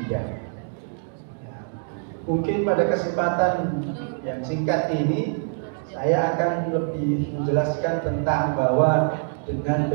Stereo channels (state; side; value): silent; left; digital silence